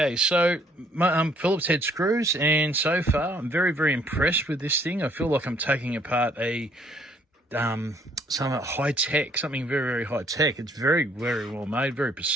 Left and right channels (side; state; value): both; normal; correlation 0.63